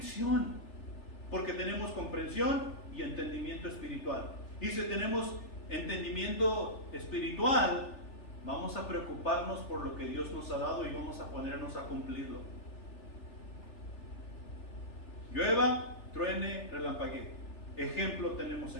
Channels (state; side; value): late; right; 3.4 ms